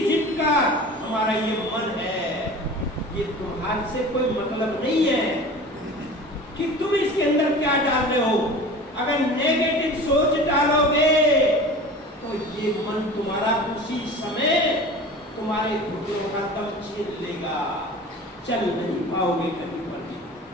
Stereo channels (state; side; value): normal; both; correlation 0.38